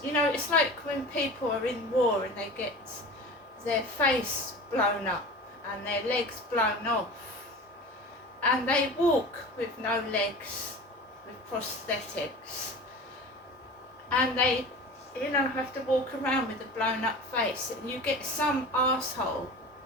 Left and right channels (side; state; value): both; normal; correlation 0.36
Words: you know, it's like when people are in war and they get their face blown up and their legs blown off, and they walk with no legs, with prosthetics, and they, you know, have to walk around with a blown up face, and you get some arsehole